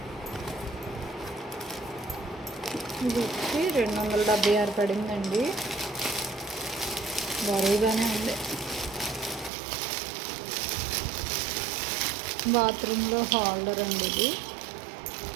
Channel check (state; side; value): drops out; left; at 9.5 s